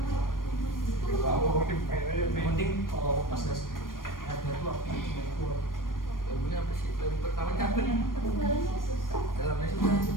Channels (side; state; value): right; late; 0.91 ms